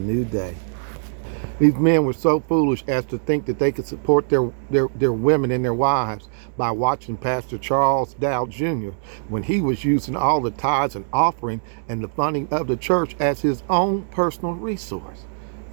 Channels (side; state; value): left; silent; digital silence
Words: day. These men were so foolish as to think that they could support their women and their wives by watching Pastor Charles Dow Jr. when he was using all the tithes and offering and the funding of the church as his own personal resource.